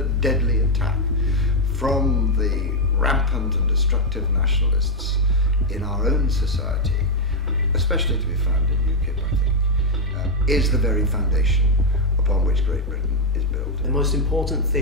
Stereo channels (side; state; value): both; normal; correlation 0.01